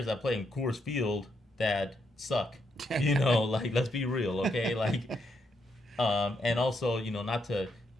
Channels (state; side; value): normal; both; correlation 0.79